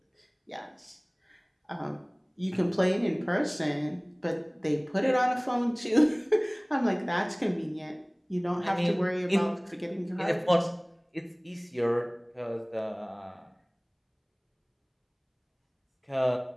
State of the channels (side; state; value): both; identical; correlation 1.00